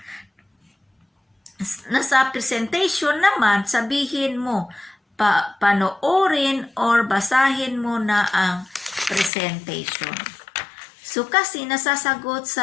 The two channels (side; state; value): right; drops out; at 9.3 s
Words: nasa presentation naman, sabihin mo, panoorin or basahin mo na ang presentation. So, kasi nasasagot